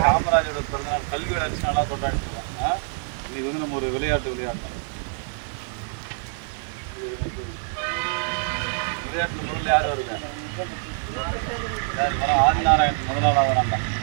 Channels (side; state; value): left; silent; 62 dB below the other